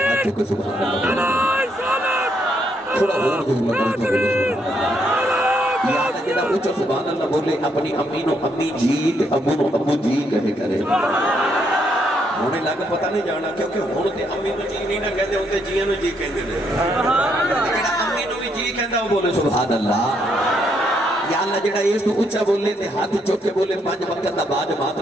چکے سبحان اللہ تھوڑا اور دوں لگا تو بولے سبحان اللہ یاد ہے جنہا اونچا سبحان اللہ بولے اپنی امی نو امی جی تے ابو نو ابو جی کہے کرے ہونے لگا پتہ نہیں جانا کیونکہ ہونے امی نو جی نہیں نہ کہتے ہوتے جیاں نو جی کہتے ہیں جڑا امی نو بھی جی کہندا وہ بولے سبحان اللہ یا اللہ جڑا اس تو اونچا بولے تے ہاتھ چوک کے بولے 5 وقت دا بعد مات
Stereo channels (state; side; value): normal; both; correlation 0.74